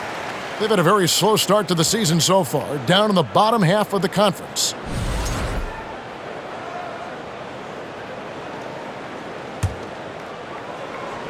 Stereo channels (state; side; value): identical; both; correlation 1.00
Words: They've had a very slow start to the season so far, down in the bottom half of the conference.